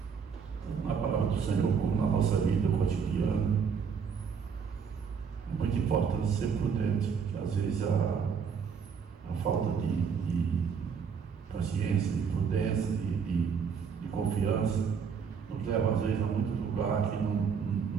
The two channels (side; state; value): left; quieter; 6.4 dB